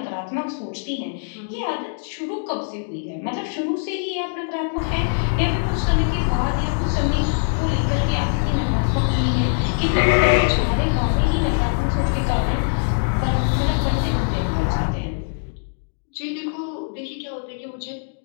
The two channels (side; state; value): right; silent; 64 dB below the other